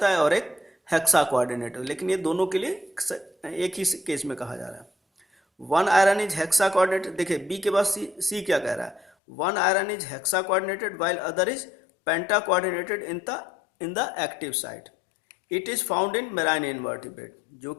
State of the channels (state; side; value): drops out; right; at 9.1 s